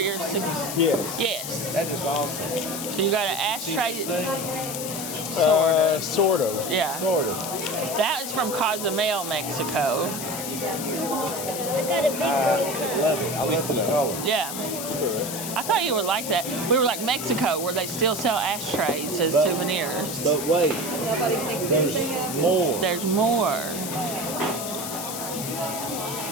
Yes. Yes. That is awesome. So you got an ashtray... See this thing? Sort of. Yeah. Sort of. That is from Cozumel, Mexico. I got a big I love it. I love the color. Yeah. I thought you would like that. We were like Mexico, where they still sell ashtrays as But- souvenirs. But wait, there's more. There's more.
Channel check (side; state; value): left; noise; hiss, 6 dB below the sound